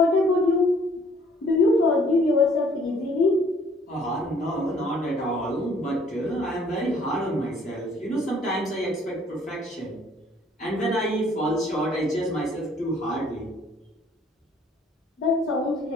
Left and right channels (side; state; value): both; normal; correlation 0.60